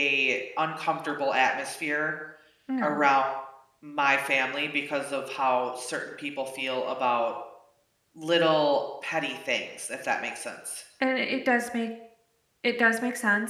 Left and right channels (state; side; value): identical; both; correlation 1.00